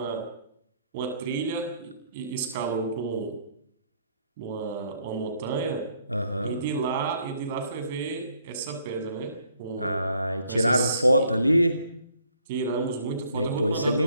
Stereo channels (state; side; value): inverted; both; correlation -0.66